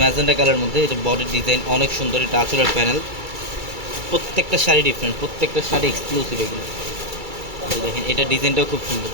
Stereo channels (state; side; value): late; left; 2.3 ms